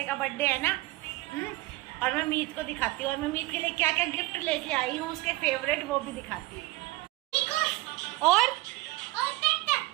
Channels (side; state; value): left; quieter; 20.1 dB